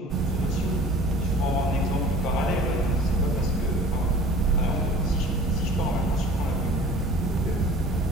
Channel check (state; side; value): normal; both; correlation 0.45